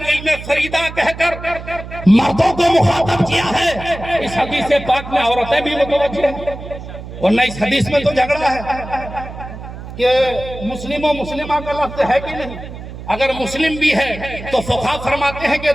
فریدہ کہہ کر مردوں کو مخاطب کیا ہے، اس حدیث پاک میں عورتیں بھی متوجہ ہیں، ورنہ اس حدیث میں تو جھگڑا ہے کہ مسلم و مسلمہ کا لفظ ہے کہ نہیں. اگر مسلم بھی ہے تو فقہا فرماتے ہیں کہ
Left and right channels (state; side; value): noise; right; hum, 12 dB below the sound